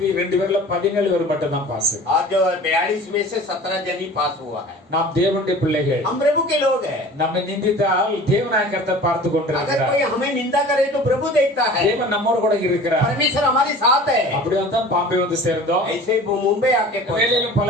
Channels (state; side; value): normal; both; correlation 0.42